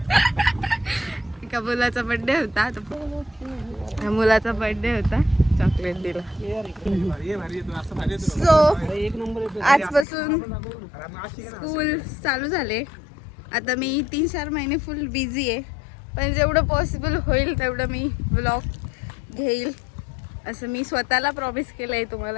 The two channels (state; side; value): drops out; right; at 10.1 s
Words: एका मुलाचा बर्थडे होता. मुलाचा बर्थडे होता, चॉकलेट दिला. सो आजपासून स्कूल चालू झाले. आता मी 3-4 महिने फुल बिझी आहे, पण जेवढं पॉसिबल होईल तेवढं मी व्लॉग घेईल असं मी स्वतःला प्रॉमिस केलं आहे.